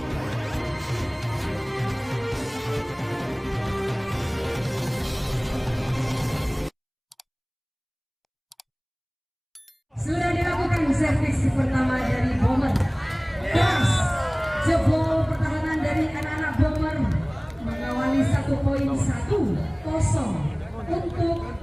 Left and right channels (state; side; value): identical; both; correlation 1.00